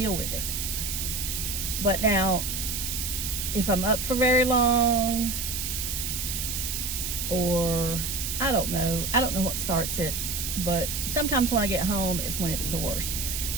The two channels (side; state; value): right; noise; hiss, 3 dB below the sound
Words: with it. But now, if I'm up for very long, or I don't know what starts it, but sometimes when I get home is when it's the worst.